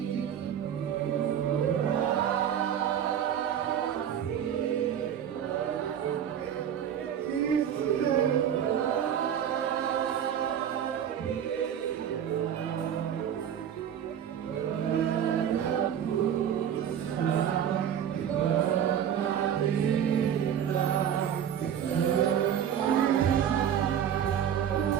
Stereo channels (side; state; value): left; quieter; 9.2 dB